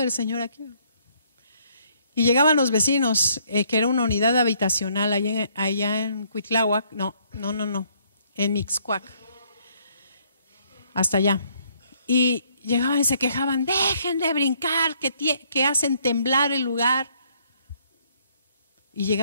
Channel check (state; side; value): inverted; both; correlation -0.66